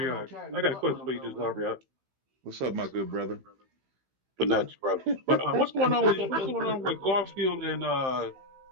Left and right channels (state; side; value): late; left; 15 ms